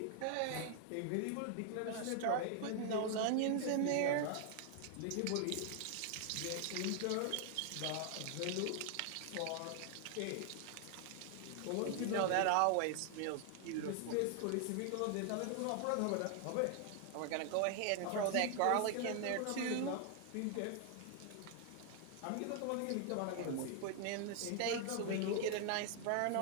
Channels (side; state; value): both; different; correlation 0.00